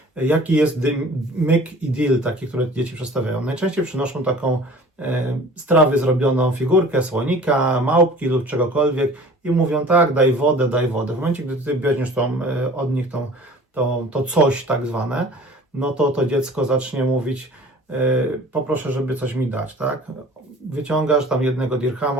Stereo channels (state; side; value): normal; both; correlation 0.46